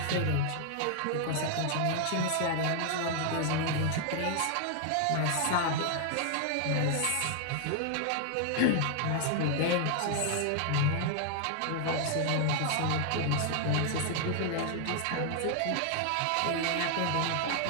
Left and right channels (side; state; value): both; different; correlation 0.00